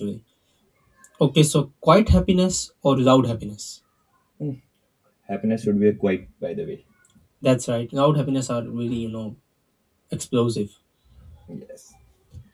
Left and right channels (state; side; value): identical; both; correlation 1.00